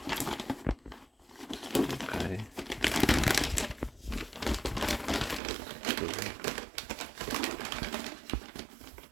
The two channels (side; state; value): left; drops out; at 5.4 s